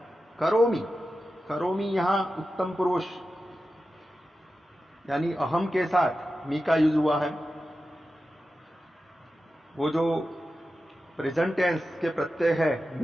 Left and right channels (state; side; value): normal; both; correlation 0.92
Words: करोमि, करोमि यहां उत्तम पुरुष यानी अहम के साथ मी का यूज हुआ है। वो जो प्रेजेंट टेंस के प्रत्यय है,